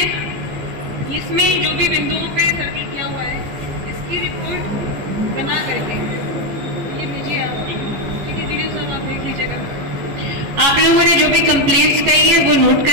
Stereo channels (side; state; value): left; late; 14 ms